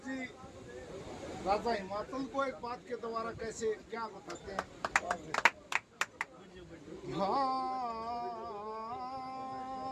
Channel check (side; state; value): both; identical; correlation 1.00